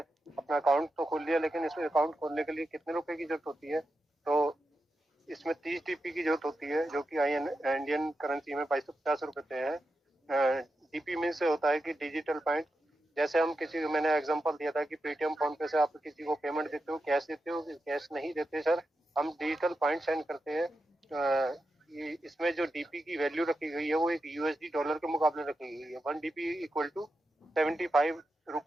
अपना अकाउंट तो खोल लिया, लेकिन इसमें अकाउंट खोलने के लिए कितने रुपए की जरूरत होती है? तो इसमें 30 डीपी की जरूरत होती है, जो कि इंडियन करेंसी में 2250 रुपए है। डीपी मीन से होता है कि डिजिटल पॉइंट। जैसे हम किसी को, मैंने एग्जांपल दिया था कि पेटीएम फोन पे से आप किसी को पेमेंट देते हो, कैश देते हो, कैश नहीं देते सर, हम डिजिटल पॉइंट सेंड करते हैं। इसमें जो डीपी की वैल्यू रखी गई है वो एक यूएसडी डॉलर के मुकाबले रखी गई है। 1 डीपी इक्वल टू 75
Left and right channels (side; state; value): both; normal; correlation 0.88